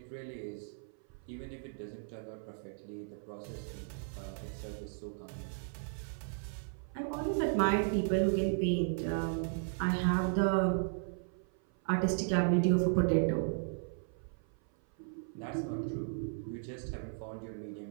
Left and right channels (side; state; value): left; silent; 54 dB below the other